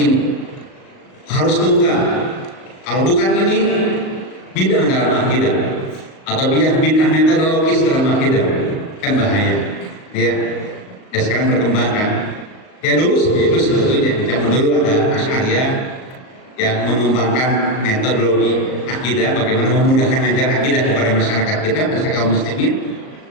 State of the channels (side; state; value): right; late; 38 ms